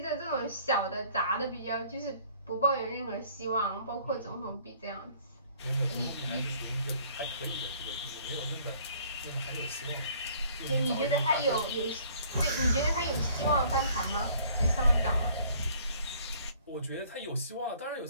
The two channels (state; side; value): inverted; both; correlation -0.57